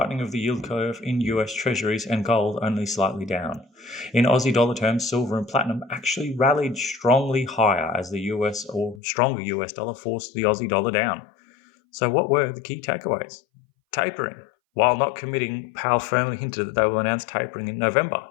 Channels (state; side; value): drops out; right; at 9.0 s